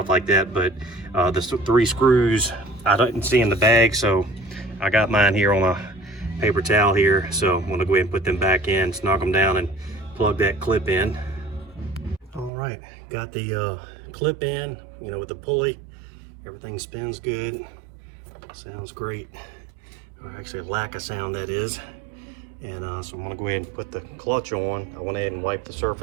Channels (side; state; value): left; drops out; at 12.5 s